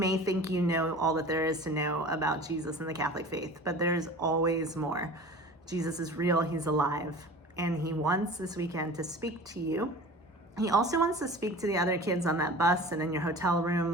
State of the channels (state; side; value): normal; both; correlation 0.39